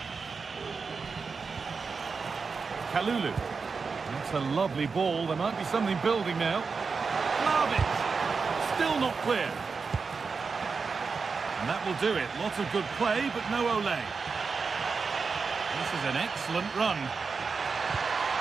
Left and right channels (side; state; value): left; quieter; 4.9 dB